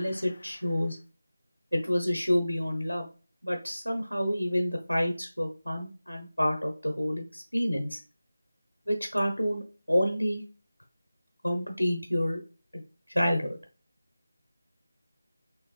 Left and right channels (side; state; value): both; inverted; correlation -0.96